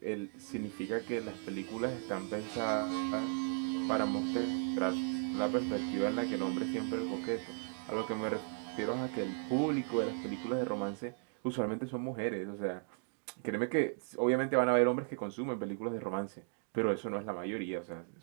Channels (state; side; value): silent; left; 54 dB below the other